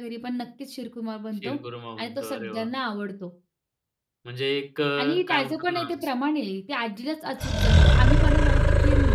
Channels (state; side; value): identical; both; correlation 1.00